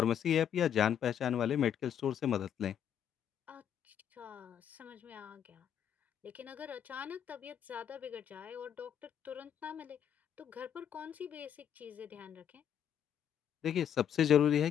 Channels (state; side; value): quieter; right; 9.1 dB